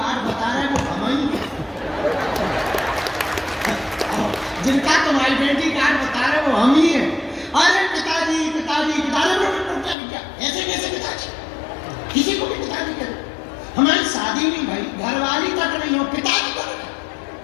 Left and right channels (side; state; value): right; drops out; at 10.0 s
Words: बता रहे वो हम ही हैं। जिनका तुम आइडेंटिटी कार्ड बता रहे वो हम ही हैं। अरे पिताजी पिताजी पिताजी, क्या ऐसे कैसे पिताजी? किसी को भी पिताजी करो, हमारी शादी नहीं भाई, घरवाली तक नहीं हो, पिताजी करो।